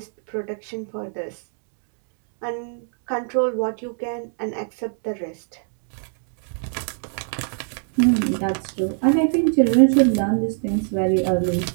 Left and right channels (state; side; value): silent; left; 61 dB below the other